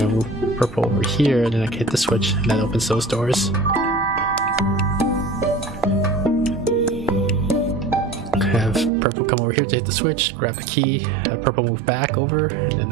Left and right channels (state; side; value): drops out; left; at 8.9 s